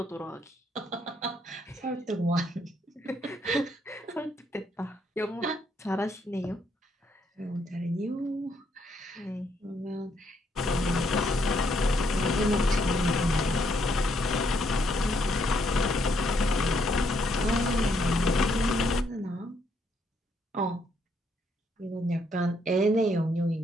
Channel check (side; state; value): both; normal; correlation 0.73